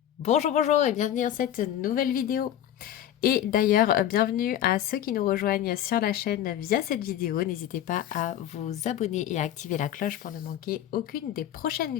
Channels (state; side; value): quieter; right; 11.2 dB